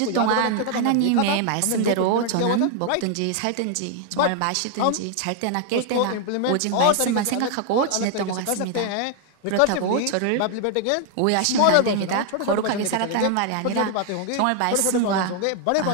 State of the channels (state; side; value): different; both; correlation 0.00